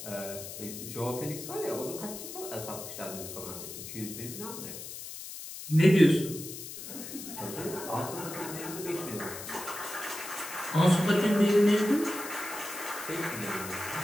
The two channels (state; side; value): noise; left; hiss, 10 dB below the sound